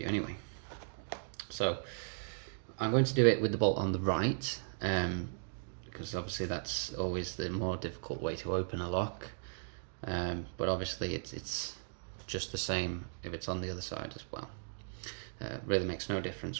anyway. So I'm going to do it with the bolt on the right, because obviously that's always the more difficult way to open a lock. But obviously it's just the same if it's on the other side as well. Really makes no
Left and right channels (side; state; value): left; silent; digital silence